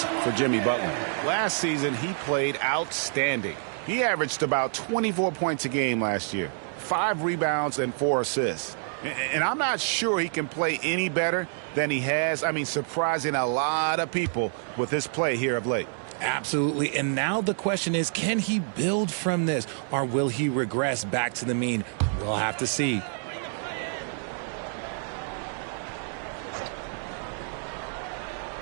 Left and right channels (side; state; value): left; silent; digital silence